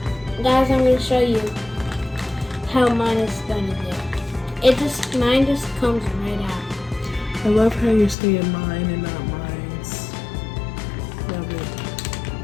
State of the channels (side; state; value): right; drops out; at 8.2 s